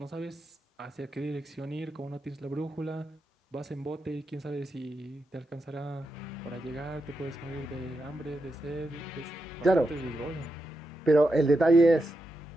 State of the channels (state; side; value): normal; both; correlation 0.86